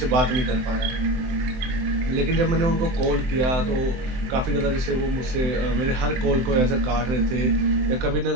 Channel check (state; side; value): late; left; 23 ms